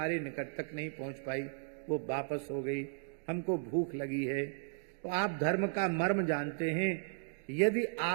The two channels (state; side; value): silent; left; digital silence